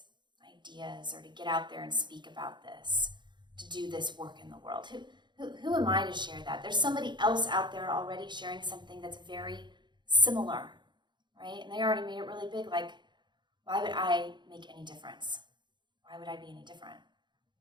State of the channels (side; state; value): left; late; 0.22 ms